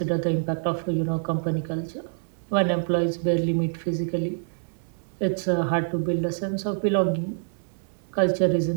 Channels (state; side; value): silent; left; 61 dB below the other